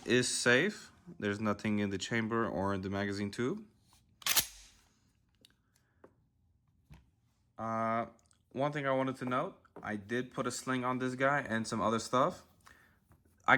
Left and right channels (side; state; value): both; identical; correlation 1.00